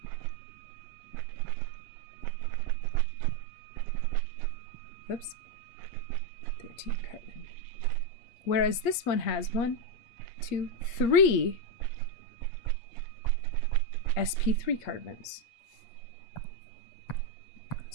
Whoops, 13 carbon. Whereas this one has 1, 2, 3 sp3 carbons.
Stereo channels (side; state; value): right; late; 8.5 ms